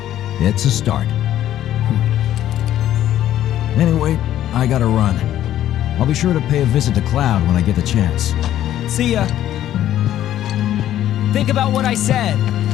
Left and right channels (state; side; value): quieter; right; 12.2 dB